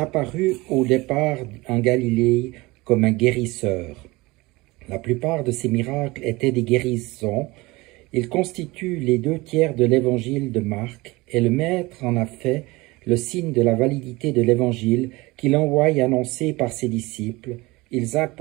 au départ en Galilée comme un guérisseur. La plupart de ses miracles étaient des guérisons. Il constitue les 2/3 de l'évangile de Marc et le Maître en a fait le signe de la validité de l'évangile qu'il envoie annoncer par ses disciples. Ils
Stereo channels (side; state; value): left; quieter; 22.1 dB